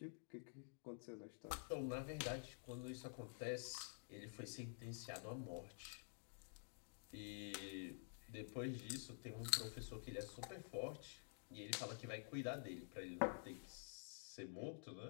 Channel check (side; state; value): right; silent; digital silence